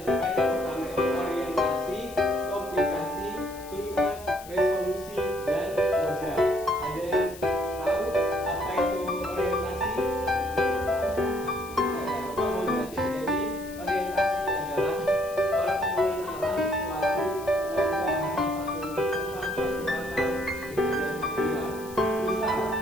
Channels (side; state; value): left; noise; hiss, 18 dB below the sound